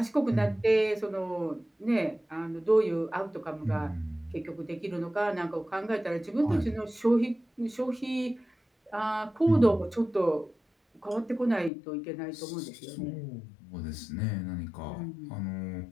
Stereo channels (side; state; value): right; drops out; at 11.7 s